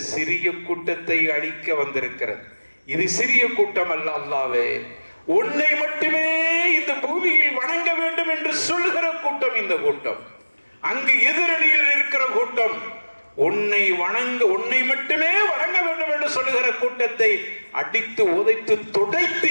சிறிய கூட்டத்தை அழிக்க வந்திருக்கிறது. இது சிறிய கூட்டம் அல்ல. அல்லாஹ்வே, உன்னை மட்டுமே இந்த பூமியில் வணங்க வேண்டும் என்று சொல்கிற கூட்டம் இந்த கூட்டம். அங்கு எதிரணியில் இருக்கிற கூட்டம் உன்னை மட்டுமே வணங்க வேண்டும் என்று சொல்லுகிற கூட்டத்தை அடித்து உதைத்து துடைத்து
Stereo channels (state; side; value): inverted; both; correlation -1.00